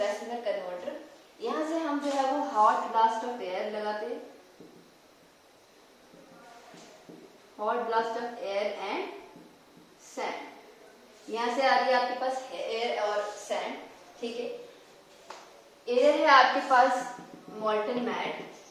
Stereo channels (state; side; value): identical; both; correlation 1.00